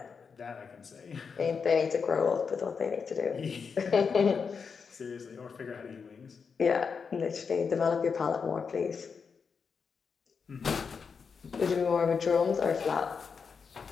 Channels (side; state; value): right; quieter; 5.7 dB